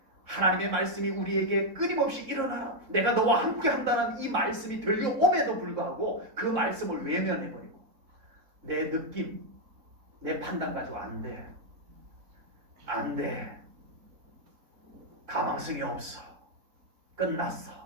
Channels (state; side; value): late; left; 4.0 ms